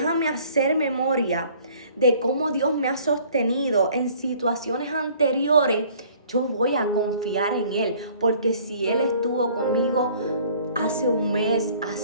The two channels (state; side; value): inverted; both; correlation -0.55